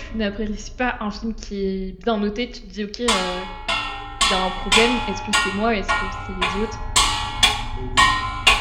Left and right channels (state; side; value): identical; both; correlation 1.00